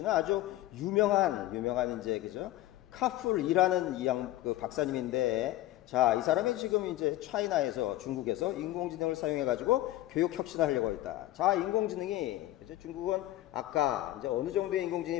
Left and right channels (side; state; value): right; quieter; 15.4 dB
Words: 아주 유명한 이제 그죠? 카풀이라는 그 박사님인데 자, 이 사람이 지금 이제 중국에서 인공지능을 사용해가지고 교육 혁신을 하려고 했다. 자, 인공지능이 그죠? 중국은 아까 이제 어느 정도의